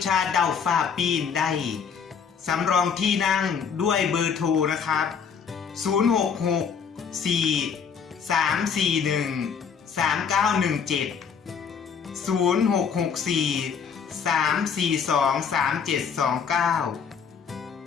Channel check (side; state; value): right; quieter; 6.5 dB